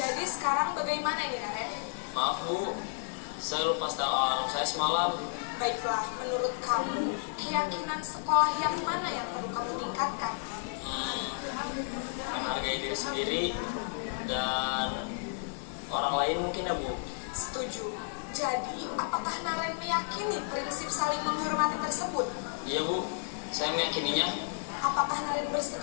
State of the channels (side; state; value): right; silent; 56 dB below the other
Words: sekarang bagaimana ini, Naren? Maaf Bu, saya lupa setel alarm saya semalam. Baiklah, menurut kamu, keyakinan sekolah yang mana yang perlu kamu tingkatkan? Menghargai diri sendiri dan orang lain mungkin ya Bu. Setuju. Jadi, apakah Naren meyakini prinsip saling menghormati tersebut? Iya Bu, saya meyakininya. Apakah Naren